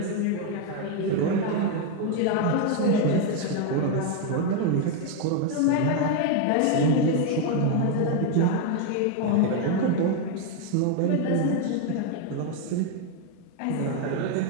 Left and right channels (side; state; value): both; different; correlation 0.01